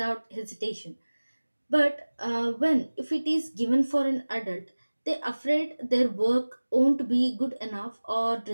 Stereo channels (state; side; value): inverted; both; correlation -1.00